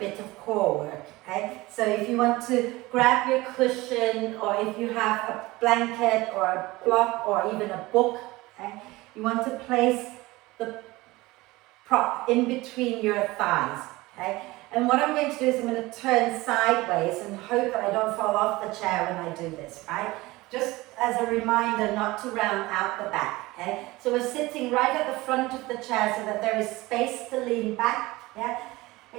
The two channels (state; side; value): quieter; left; 20.4 dB